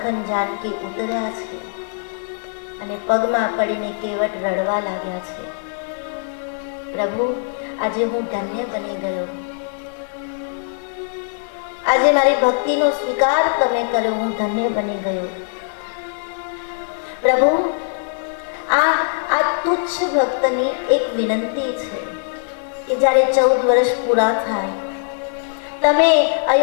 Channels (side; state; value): right; silent; 56 dB below the other